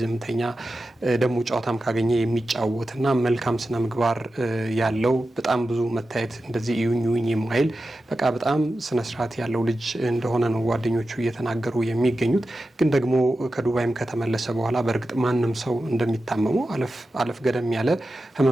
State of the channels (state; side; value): normal; both; correlation 0.92